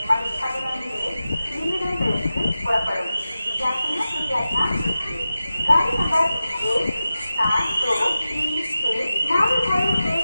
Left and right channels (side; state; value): both; inverted; correlation -0.93